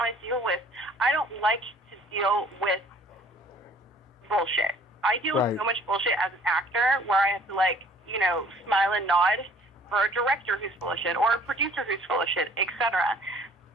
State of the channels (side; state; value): both; normal; correlation 0.54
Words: to deal with bullshit. I deal with so much bullshit as an actor where I have to, smile and nod for a director who's full of shit or a producer who's full of shit, etc.